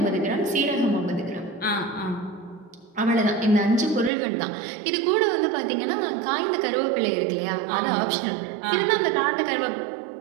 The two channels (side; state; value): left; drops out; at 4.1 s